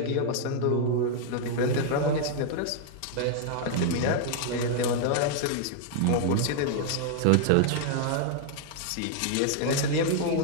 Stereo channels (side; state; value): both; different; correlation 0.00